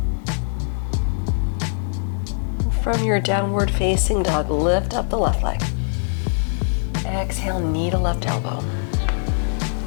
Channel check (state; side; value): silent; right; digital silence